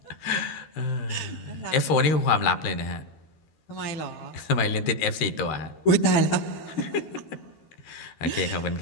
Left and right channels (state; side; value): late; right; 13 ms